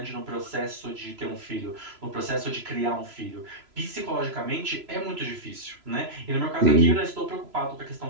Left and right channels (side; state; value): left; late; 3.0 ms